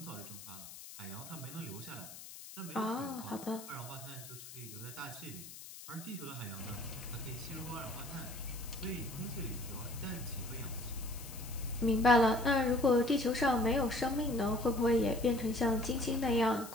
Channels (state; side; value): noise; left; hiss, 14 dB below the sound